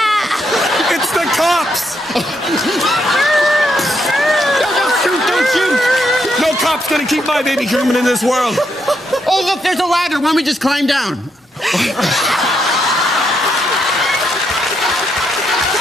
It's the cops. Don't shoot. No cop's gonna keep my baby coming in this world. Oh, look, there's a ladder. Why don't we just climb down? Come on.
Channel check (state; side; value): normal; both; correlation 0.78